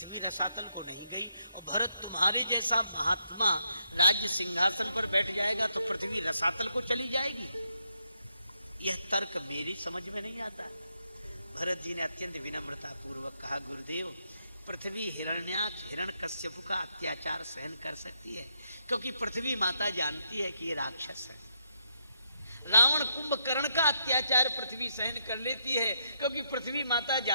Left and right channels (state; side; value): inverted; both; correlation -0.78